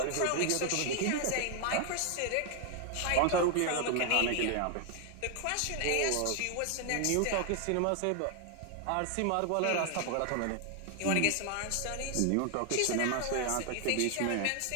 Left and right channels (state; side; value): different; both; correlation 0.00